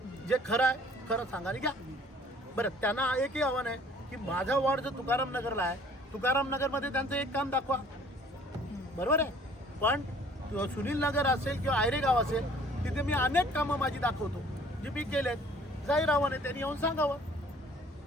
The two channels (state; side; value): normal; both; correlation 0.54